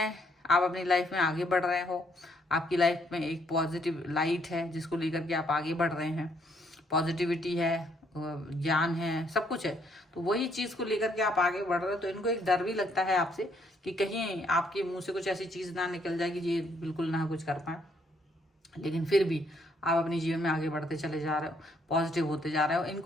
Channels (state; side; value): normal; both; correlation 0.70